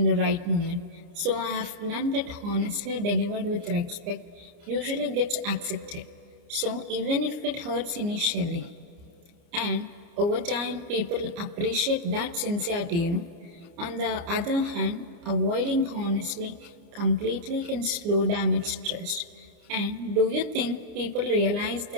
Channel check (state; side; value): late; left; 29 ms